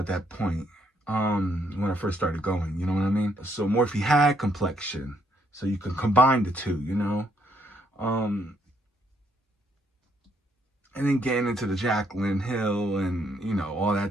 that point. When I first started going, you know what I mean? So Morphe had complexion. So you can combine the two, Um, and then getting into the Jaclyn Hill and, all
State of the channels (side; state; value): both; normal; correlation 0.72